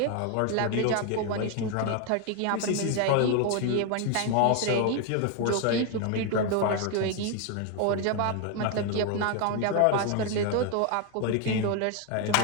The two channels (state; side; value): different; both; correlation 0.01